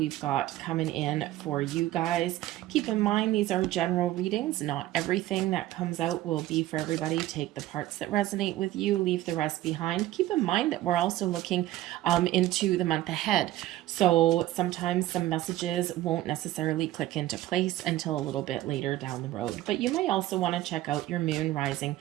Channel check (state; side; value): quieter; left; 15.3 dB